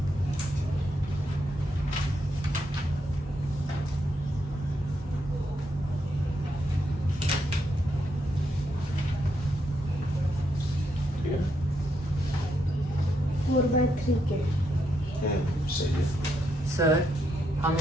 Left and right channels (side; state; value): both; normal; correlation 0.79